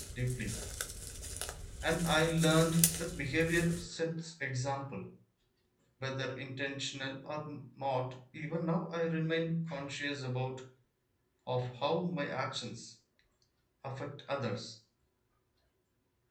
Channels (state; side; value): identical; both; correlation 1.00